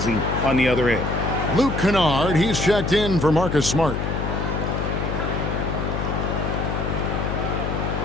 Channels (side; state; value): left; noise; hum, 2 dB below the sound